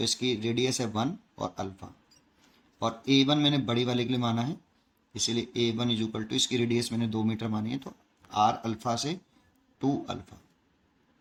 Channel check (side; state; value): both; identical; correlation 1.00